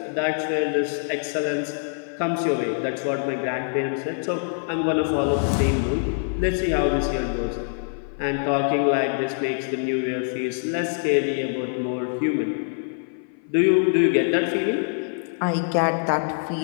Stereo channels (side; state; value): right; silent; 57 dB below the other